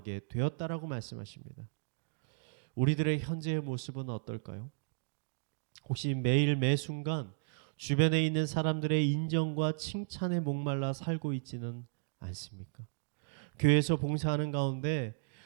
되었다라고 말씀하십니다. 우리들의 현재의 모습은 어떨까요? 혹시 매일 매 순간 주변에 있는 사람들의 인정과 칭찬에 목말라 살고 있지는 않습니까? 교회에서 봉사하는 가운데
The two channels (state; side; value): silent; left; digital silence